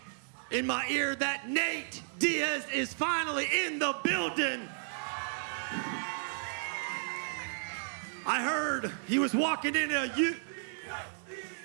in my ear that Nate Diaz is finally in the building. I heard he was walking in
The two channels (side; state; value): left; silent; digital silence